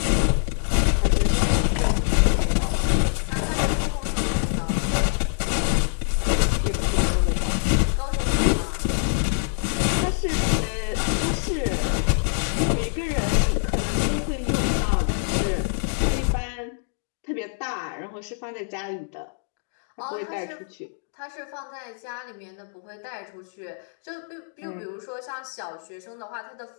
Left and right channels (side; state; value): right; silent; digital silence